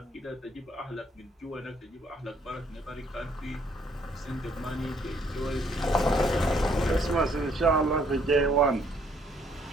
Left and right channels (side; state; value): both; normal; correlation 0.66